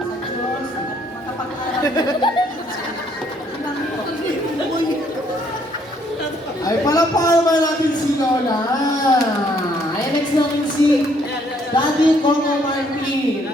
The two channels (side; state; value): both; normal; correlation 0.67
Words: Ay, palapaan naman natin si Lola. Ay, next natin si Daddy Coco Martin.